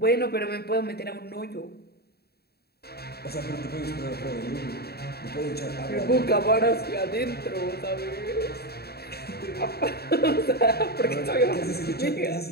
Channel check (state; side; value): late; right; 0.46 ms